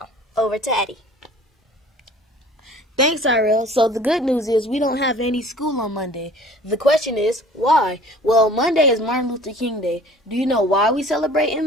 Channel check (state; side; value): normal; both; correlation 0.49